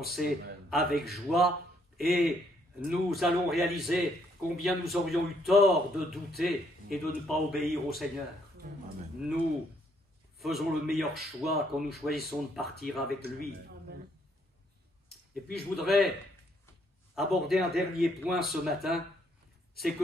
avec joie, et nous allons réaliser combien nous aurions eu tort de douter et de ne pas obéir au Seigneur. Amen. Nous faisons le meilleur choix quand nous choisissons de partir avec lui. Amen. Et puis je voudrais aborder un dernier point ce matin, c'est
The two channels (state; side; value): normal; both; correlation 0.69